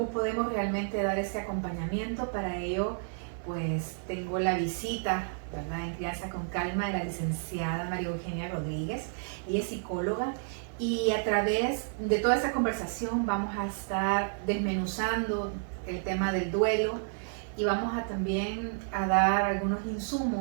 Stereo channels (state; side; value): silent; left; digital silence